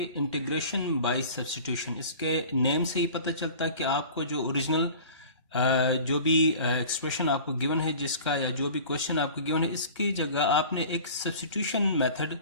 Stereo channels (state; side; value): inverted; both; correlation -0.41